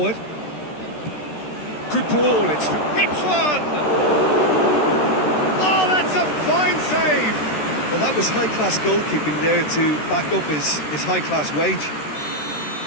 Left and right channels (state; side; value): late; right; 13 ms